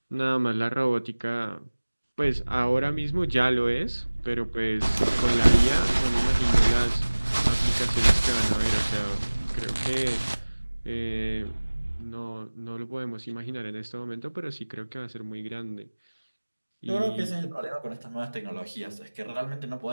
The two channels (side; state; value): both; inverted; correlation -1.00